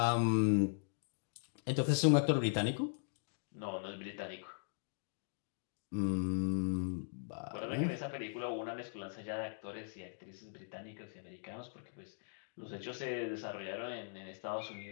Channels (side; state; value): right; silent; digital silence